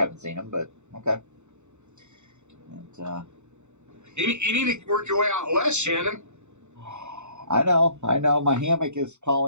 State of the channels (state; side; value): late; left; 0.83 ms